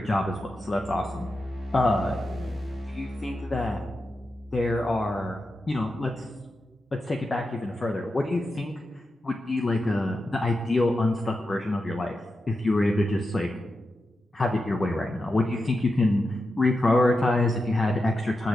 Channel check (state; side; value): normal; both; correlation 0.89